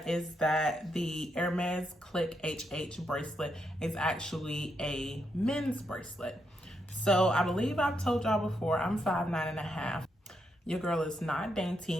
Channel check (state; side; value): normal; both; correlation 0.81